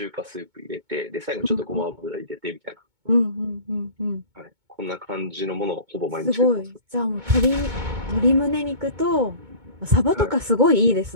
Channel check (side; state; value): left; late; 2.2 ms